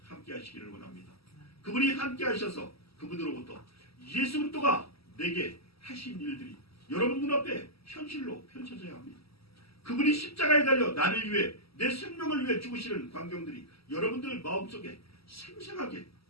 함께 하시기를 원합니다. 그분이 함께 하셔서 그분으로부터 예수 그리스도가 내게 하신 일들이 여러분 눈앞에 현실로 펼쳐져야 합니다. 그분이 십자가에 달려 나를 위해 내 생명을 위해 죽으시는 광경들이 여러분들 마음속에 생생하게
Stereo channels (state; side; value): late; right; 0.76 ms